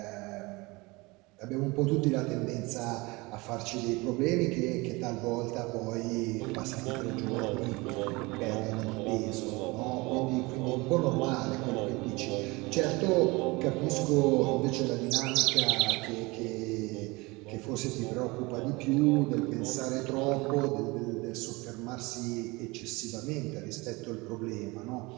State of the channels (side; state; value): left; quieter; 24.2 dB